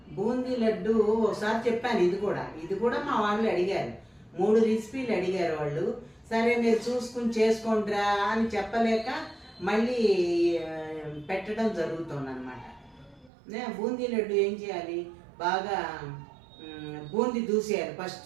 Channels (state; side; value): drops out; left; at 13.3 s